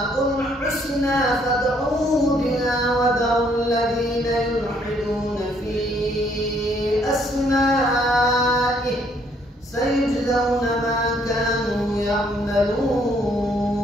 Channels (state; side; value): normal; both; correlation 0.67